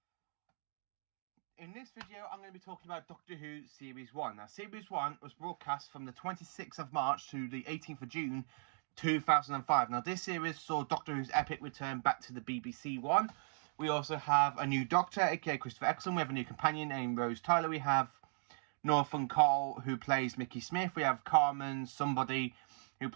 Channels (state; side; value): silent; left; digital silence